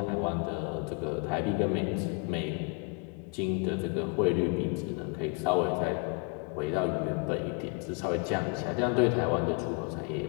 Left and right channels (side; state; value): right; quieter; 32.2 dB